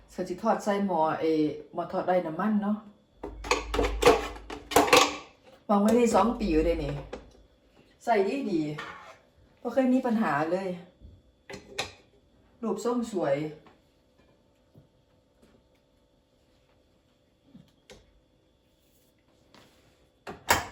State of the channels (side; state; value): both; identical; correlation 1.00